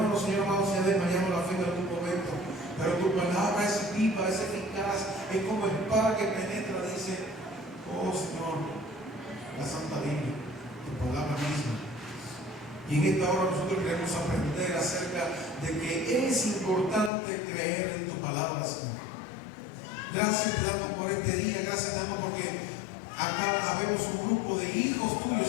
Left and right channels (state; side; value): drops out; right; at 17.1 s